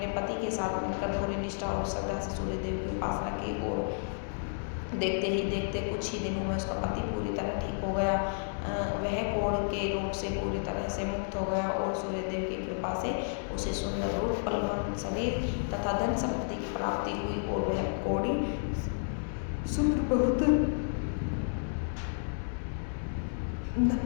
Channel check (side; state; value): right; silent; digital silence